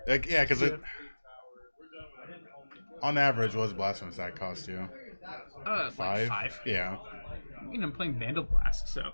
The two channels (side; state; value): both; inverted; correlation -1.00